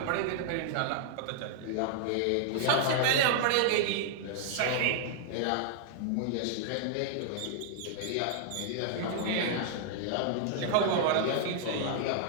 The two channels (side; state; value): both; different; correlation -0.01